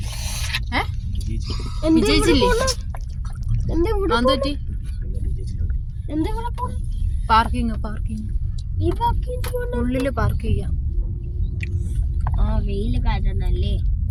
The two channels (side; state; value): both; identical; correlation 1.00